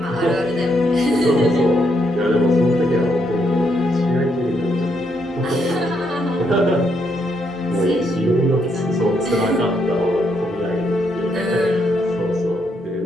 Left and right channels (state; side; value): normal; both; correlation 0.76